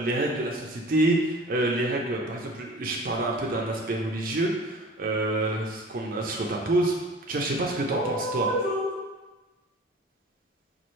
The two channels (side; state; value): both; normal; correlation 0.42